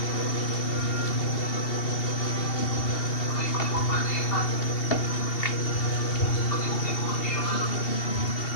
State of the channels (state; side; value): late; right; 2.7 ms